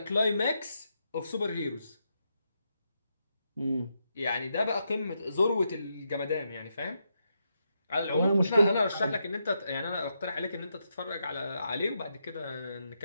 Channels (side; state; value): both; inverted; correlation -0.83